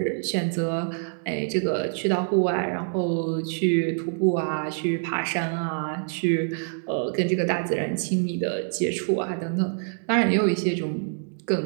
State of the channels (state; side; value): silent; left; 59 dB below the other